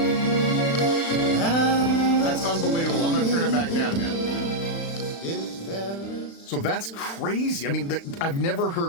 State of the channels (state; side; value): late; right; 35 ms